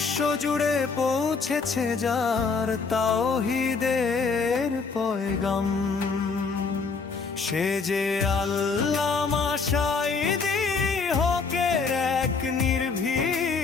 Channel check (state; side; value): quieter; right; 4.7 dB